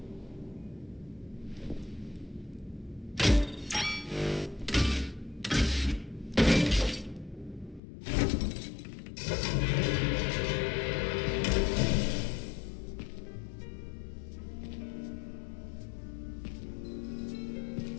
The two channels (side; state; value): right; drops out; at 7.8 s